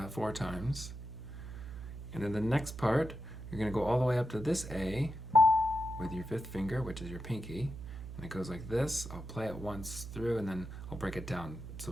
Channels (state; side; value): noise; right; hum, 10 dB below the sound